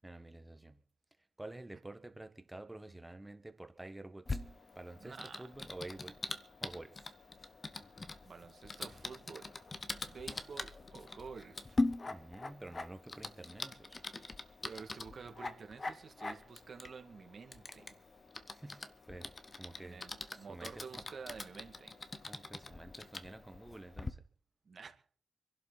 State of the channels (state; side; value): normal; both; correlation 0.95